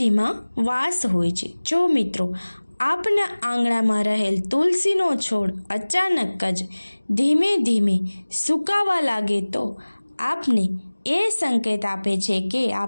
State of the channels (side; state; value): both; inverted; correlation -1.00